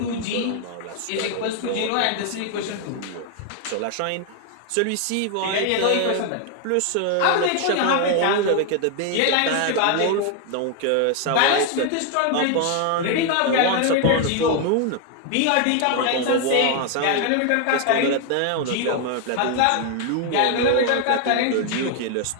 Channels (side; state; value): both; different; correlation 0.00